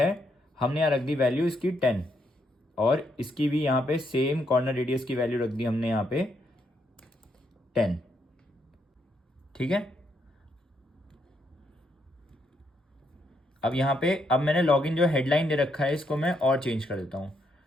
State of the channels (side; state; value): both; normal; correlation 0.77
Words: हमने यहाँ रख दी वैल्यू इसकी 10, और इसकी भी यहाँ पे सेम कॉर्नर रेडियस की वैल्यू रख दी हमने यहाँ पे 10। ठीक है। अब यहाँ पे अब मैंने लॉगिन जो हेडलाइन दे रखा है इसको मैं और चेंज कर देता हूँ।